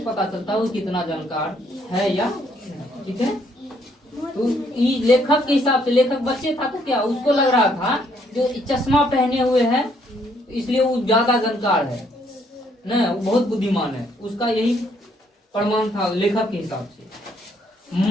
चलता है वो कितना जानकार है या। ठीक है। तो लेखक के हिसाब से, लेखक बच्चे था तो क्या उसको लग रहा था जो चश्मा पहने हुए है इसलिए वो ज्यादा जानकार है न, वो बहुत बुद्धिमान है, उसका यही प्रमाण था लेखक के हिसाब से।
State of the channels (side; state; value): both; normal; correlation 0.69